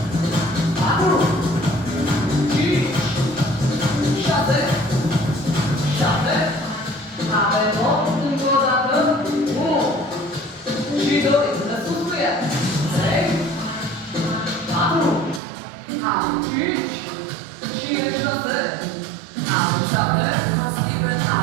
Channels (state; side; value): drops out; left; at 15.4 s